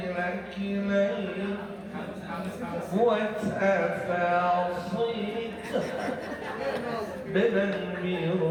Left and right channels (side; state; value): both; identical; correlation 1.00